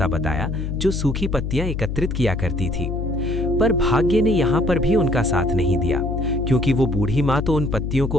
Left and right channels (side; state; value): left; noise; hum, 3 dB below the sound